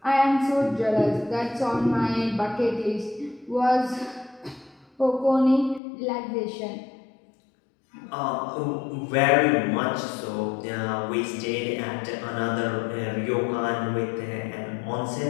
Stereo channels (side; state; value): right; drops out; at 5.8 s